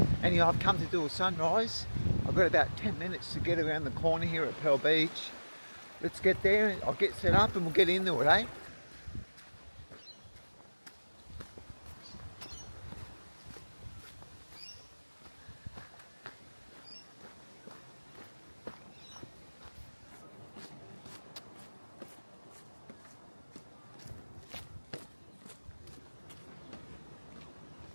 Anyway, I've come to do a sunrise. I've got about 10 minutes to get around the corner here at Pearl Beach. Let's get there, I'll get set up and we'll get into it, eh?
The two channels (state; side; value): inverted; both; correlation -1.00